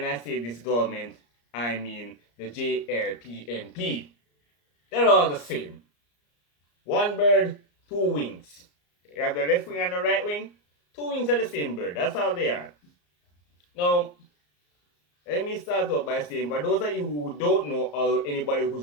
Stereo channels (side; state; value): right; late; 34 ms